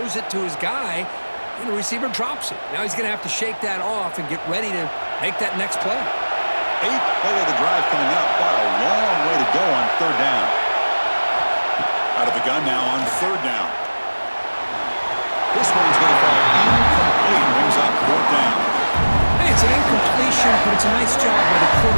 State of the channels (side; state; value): both; inverted; correlation -1.00